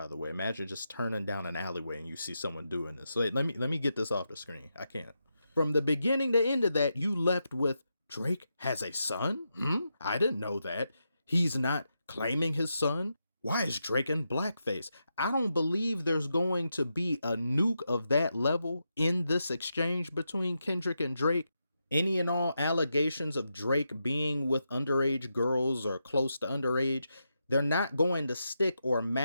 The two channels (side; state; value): both; inverted; correlation -0.86